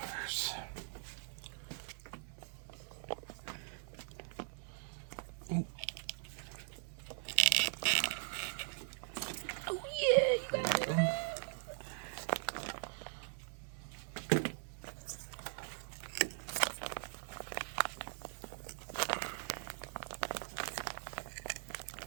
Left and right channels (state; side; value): silent; left; digital silence